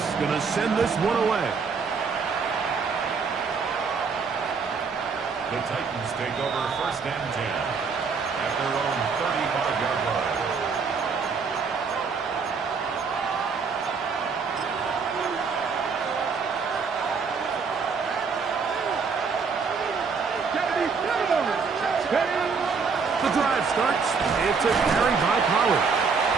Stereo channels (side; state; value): left; quieter; 5.3 dB